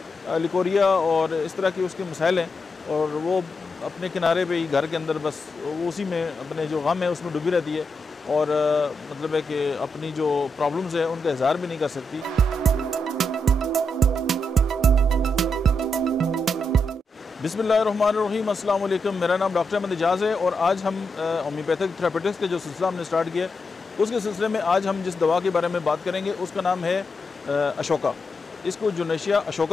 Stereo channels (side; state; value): both; normal; correlation 0.84